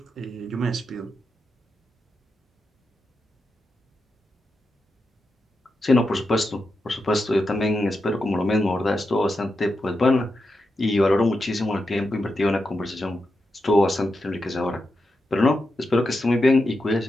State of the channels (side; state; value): both; normal; correlation 0.87